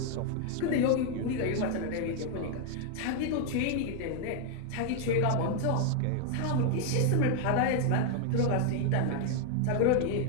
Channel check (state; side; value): different; both; correlation 0.00